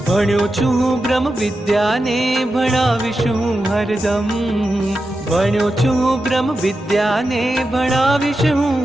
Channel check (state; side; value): normal; both; correlation 0.90